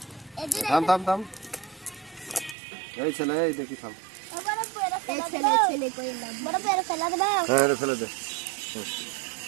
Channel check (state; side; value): drops out; left; at 2.6 s